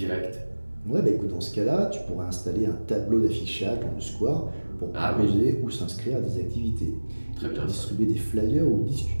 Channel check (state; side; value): inverted; both; correlation -1.00